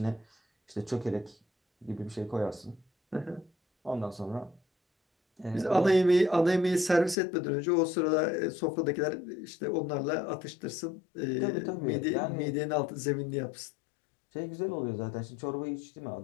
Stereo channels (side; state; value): right; drops out; at 7.2 s